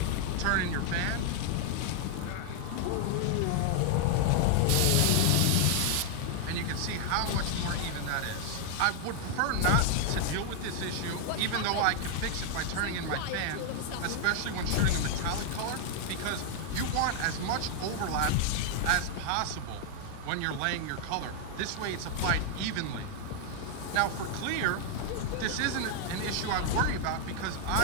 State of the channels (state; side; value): different; both; correlation 0.00